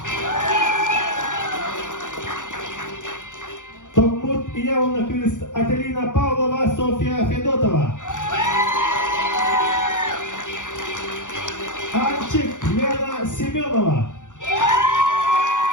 Томмут Явна Квист Ателина Павлова, Софья Федотова. Анчик Лена Семенова.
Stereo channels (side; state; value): right; late; 0.86 ms